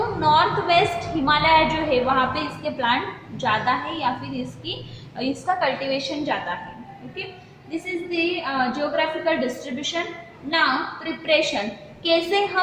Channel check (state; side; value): identical; both; correlation 1.00